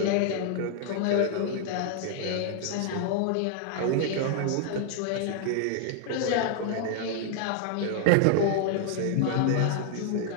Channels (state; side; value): different; both; correlation 0.00